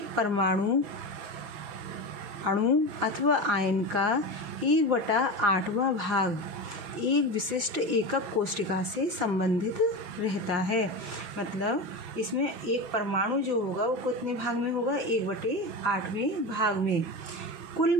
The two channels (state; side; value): late; left; 6.2 ms